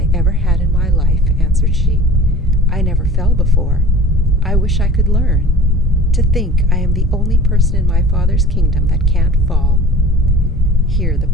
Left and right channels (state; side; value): normal; both; correlation 0.46